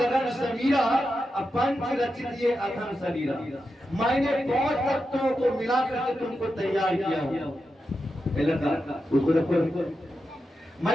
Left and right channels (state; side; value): normal; both; correlation 0.89